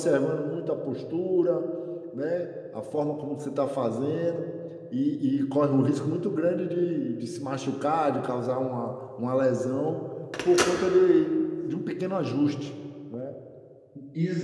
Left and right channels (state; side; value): identical; both; correlation 1.00